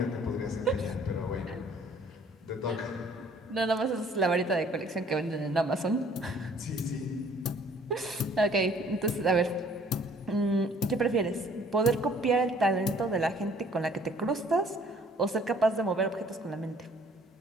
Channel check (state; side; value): normal; both; correlation 0.58